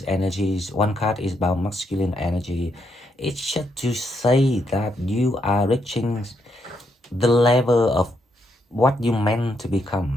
energies, one card is about masculine energy. It's just to say that you are reaching the level of what you meant to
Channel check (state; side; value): normal; both; correlation 0.78